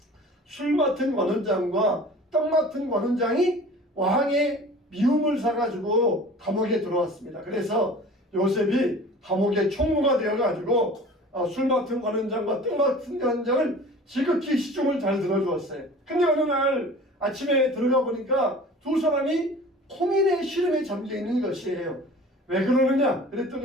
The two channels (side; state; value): both; normal; correlation 0.43